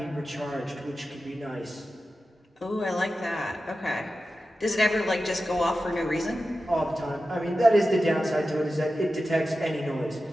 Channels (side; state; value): both; normal; correlation 0.93